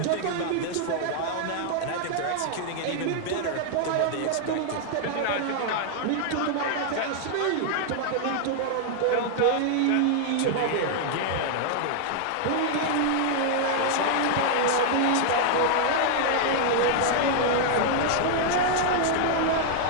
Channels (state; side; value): different; both; correlation 0.00